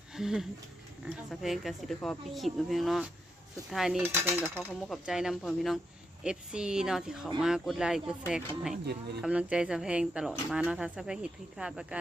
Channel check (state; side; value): normal; both; correlation 0.83